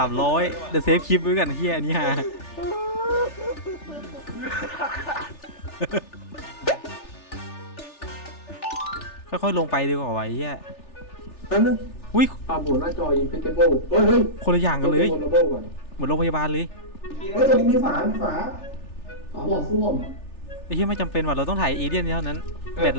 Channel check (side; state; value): right; late; 3.4 ms